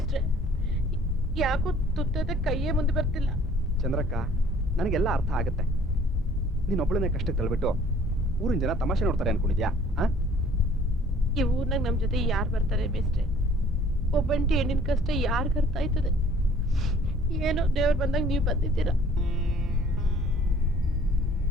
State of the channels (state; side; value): normal; both; correlation 0.55